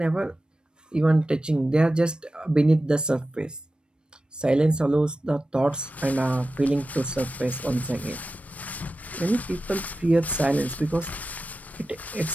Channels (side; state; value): both; normal; correlation 0.93